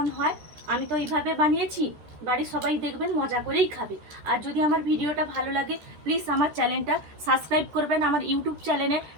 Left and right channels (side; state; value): left; late; 13 ms